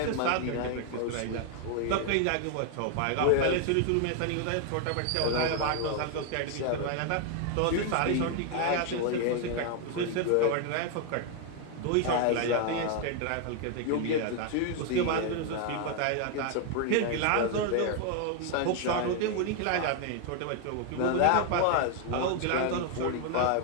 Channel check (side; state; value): both; different; correlation 0.01